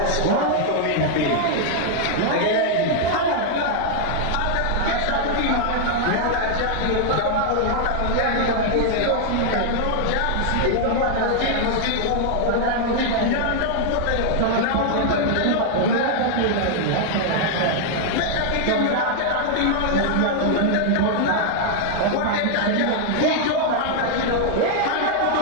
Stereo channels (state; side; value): different; both; correlation 0.00